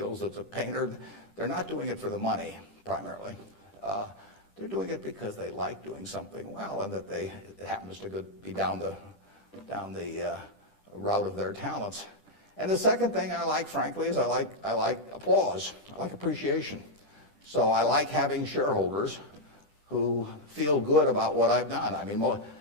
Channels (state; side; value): late; right; 10 ms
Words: it's a painter. They're not doing it for the money, primarily. They're doing it because they like doing something well, and that it happens to be down the route of their talents. And the second thing I like, frankly, is I like applause. I like appreciation. So I like having shareholders who feel good about what I've done. I mean,